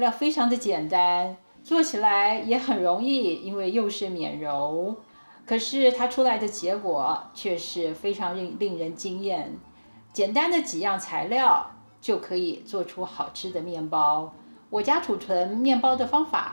非常的简单，做起来也很容易，因为又是免揉。可是它出来的结果却是非常令人惊艳。简单的几样材料就可以做出好吃的面包。我家储存面包的方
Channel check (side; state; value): both; inverted; correlation -1.00